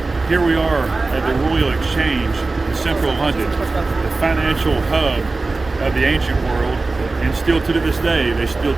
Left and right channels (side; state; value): left; quieter; 3.5 dB